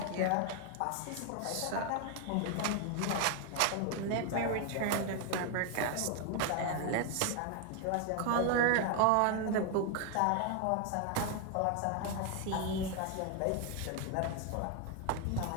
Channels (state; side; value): different; both; correlation 0.01